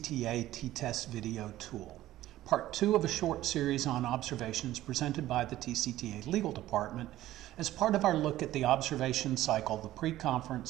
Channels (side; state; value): left; quieter; 14.7 dB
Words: T-TESS video tool, part 2 of a short series on observations presented by the TCTA Legal Department as part of our look at the observation cycle, the